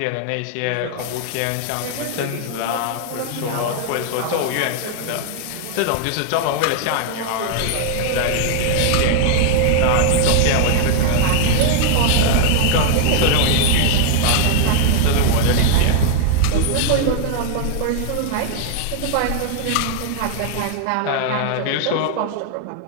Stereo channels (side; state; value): both; different; correlation 0.00